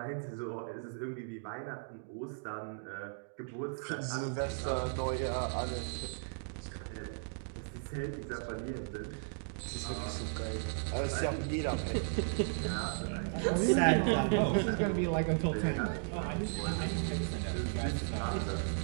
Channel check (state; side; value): silent; left; digital silence